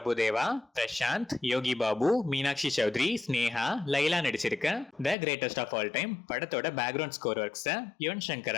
பிரசாந்த், யோகி பாபு, மீனாட்சி சௌத்ரி, ஸ்னேகா, லைலா நடிச்சிருக்க the greatest of all time படத்தோட background score works Yuvan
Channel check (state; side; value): drops out; right; at 5.2 s